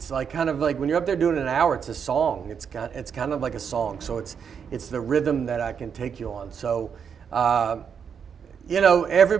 like kind of like when you're up there doing an hour, it's a song. It's kind of like a song. So it's the rhythm that I can take you on. So,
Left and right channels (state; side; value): quieter; left; 7.1 dB